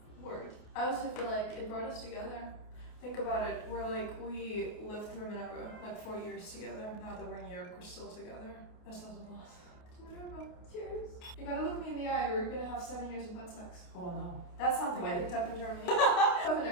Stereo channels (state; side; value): late; right; 28 ms